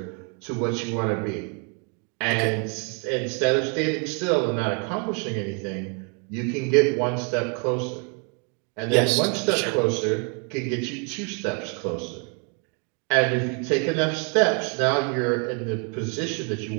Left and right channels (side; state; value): left; quieter; 37.4 dB